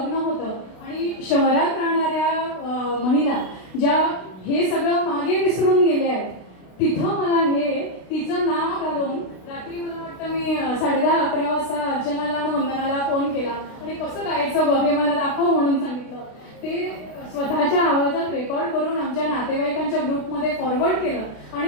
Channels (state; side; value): late; right; 32 ms